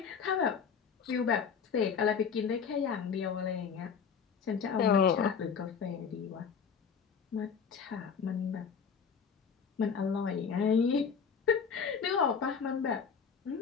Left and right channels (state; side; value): quieter; right; 6.5 dB